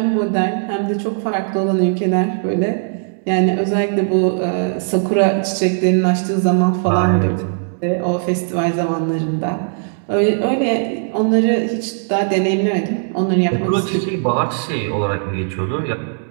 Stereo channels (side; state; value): left; silent; digital silence